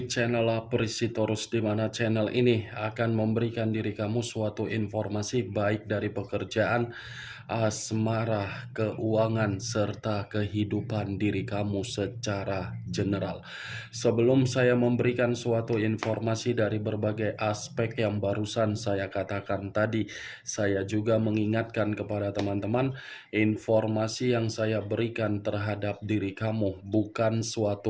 channel Aprisitorus, di mana channel ini akan memberikan diri kamu suatu informasi baik dari pekerjaan, asmara, keuangan, serta kehidupan diri kamu secara general. Sebelum saya memberikan suatu informasi dari berbagai aspek yang barusan saya katakan tadi, saya juga mengingatkan kepada teman-teman, informasi yang saya berikan terhadap diri kamu bukan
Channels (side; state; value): both; identical; correlation 1.00